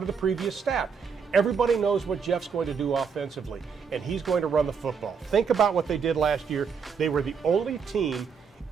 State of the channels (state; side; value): quieter; left; 6.1 dB